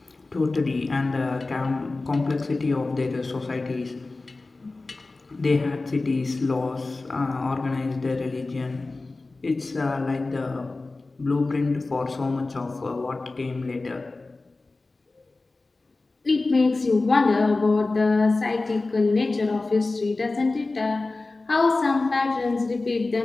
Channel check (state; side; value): quieter; right; 3.4 dB